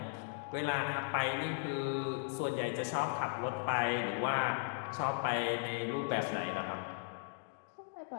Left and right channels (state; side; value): silent; right; digital silence